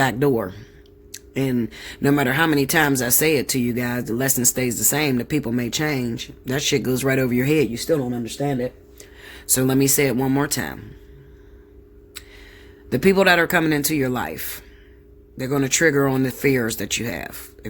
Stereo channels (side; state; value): both; identical; correlation 1.00